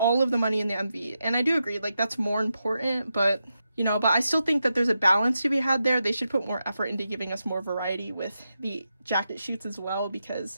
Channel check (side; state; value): both; inverted; correlation -0.87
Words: of the money in the MV, and I do agree, like, that's more important, but, you know, but I still think that there's a balance to be had there. They should put more effort into giving us more variety with the jacket shoots as well,